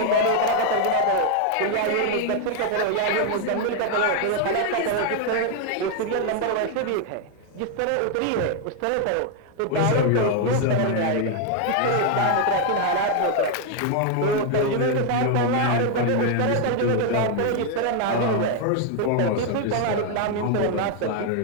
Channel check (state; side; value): different; both; correlation 0.00